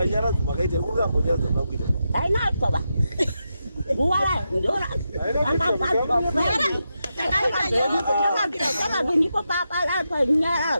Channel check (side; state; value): both; inverted; correlation -0.87